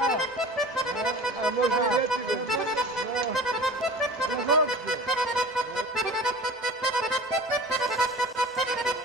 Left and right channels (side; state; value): both; normal; correlation 0.38